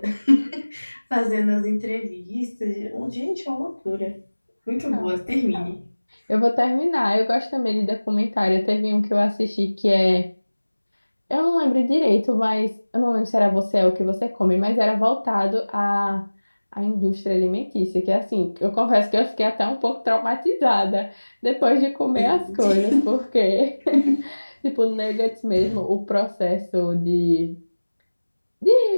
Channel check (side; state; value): both; inverted; correlation -1.00